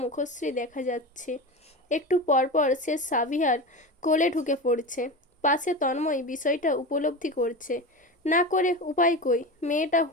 মুখশ্রী দেখা যাচ্ছে। একটু পরপর সে সাভিয়ার কোলে ঢুকে পড়ছে। পাশে তন্ময় বিষয়টা উপলব্ধি করছে। না করে উপায় কই, মেয়েটা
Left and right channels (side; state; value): both; normal; correlation 0.25